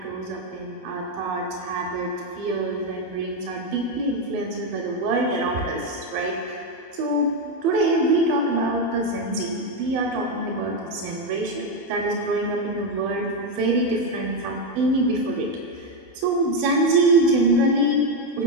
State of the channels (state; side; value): late; left; 12 ms